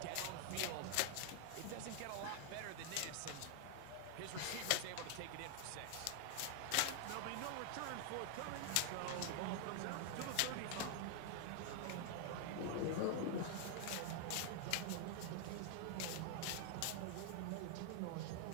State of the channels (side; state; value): both; different; correlation 0.00